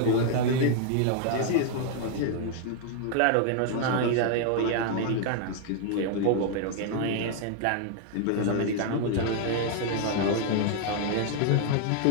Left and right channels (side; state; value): both; different; correlation 0.00